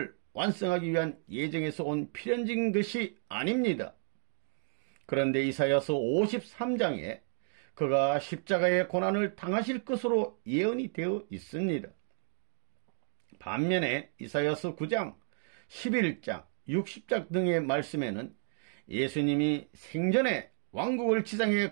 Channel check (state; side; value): silent; left; digital silence